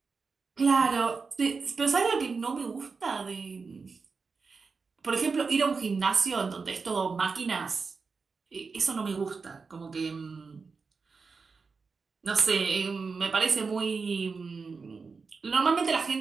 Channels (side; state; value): left; quieter; 4.8 dB